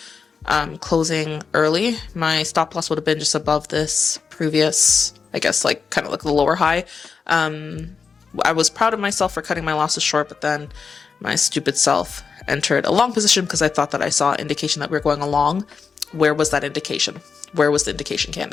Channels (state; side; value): quieter; right; 5.5 dB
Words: closing early. My stop loss would have been just above this previous, I guess, like kind of like the lower high. I was proud of myself for cutting my losses short, but then my stupid self entered a long position because I thought that I saw indication that we were going along. Where was that indication? Where was the indication,